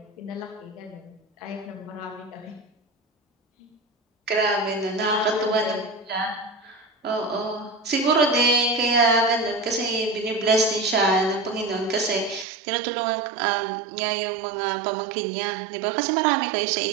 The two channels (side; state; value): left; drops out; at 12.5 s